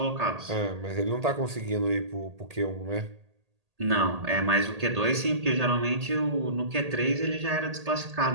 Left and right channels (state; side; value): late; left; 1.8 ms